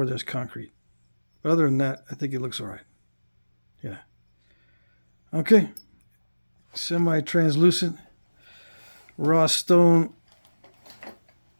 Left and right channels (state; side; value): inverted; both; correlation -1.00